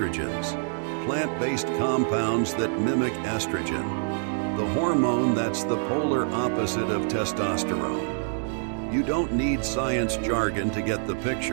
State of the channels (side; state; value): left; silent; digital silence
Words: plant-based compounds that mimic estrogen, the hormone that's the polar opposite of testosterone. You don't need science jargon to get the